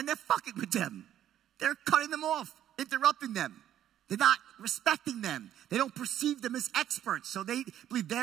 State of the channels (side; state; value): left; quieter; 11.3 dB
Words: they're fucking with them. They're cutting them off, interrupting them. They're not respecting them. They don't perceive them as experts, so they believe